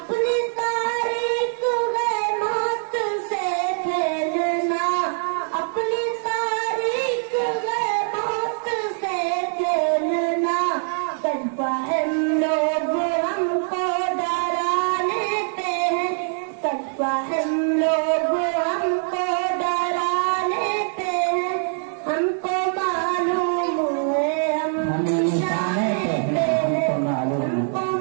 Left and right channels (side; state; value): left; silent; 63 dB below the other